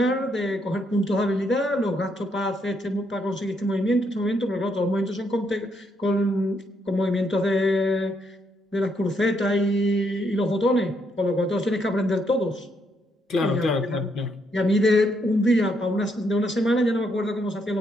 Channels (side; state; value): both; normal; correlation 0.75